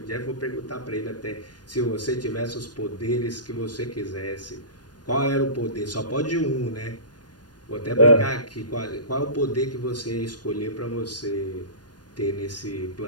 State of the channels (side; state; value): right; late; 0.69 ms